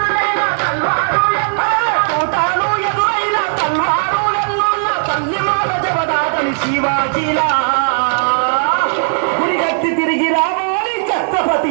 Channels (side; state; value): left; silent; 65 dB below the other